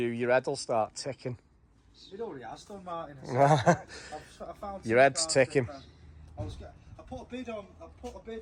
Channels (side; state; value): both; identical; correlation 1.00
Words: head will start ticking. It already has done, Martin. I found your head's ticking. I put a bid on